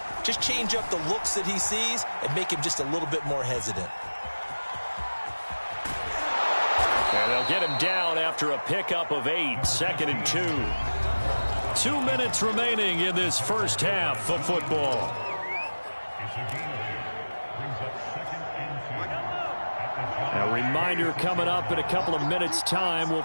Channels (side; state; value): both; inverted; correlation -1.00